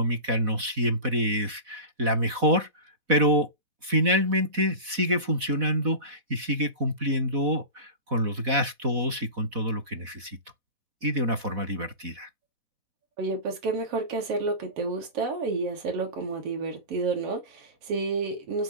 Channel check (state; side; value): late; left; 4.1 ms